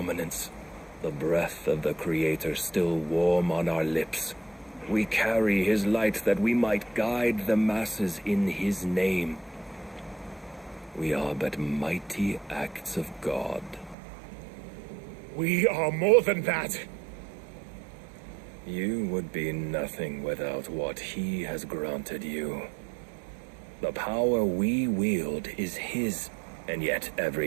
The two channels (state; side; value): drops out; left; at 14.0 s